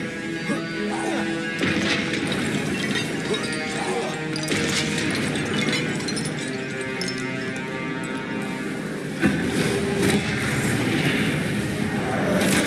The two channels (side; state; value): both; identical; correlation 1.00